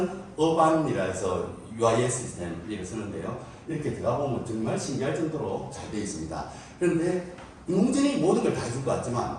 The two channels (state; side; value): identical; both; correlation 1.00